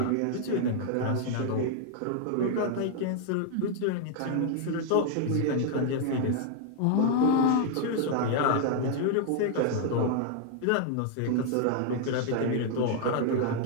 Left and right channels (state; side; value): different; both; correlation 0.00